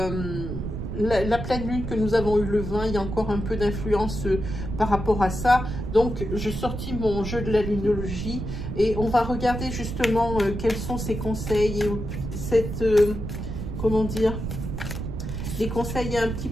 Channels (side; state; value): right; noise; rumble, 5 dB below the sound